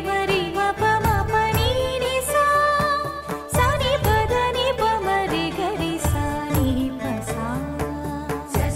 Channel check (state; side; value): identical; both; correlation 1.00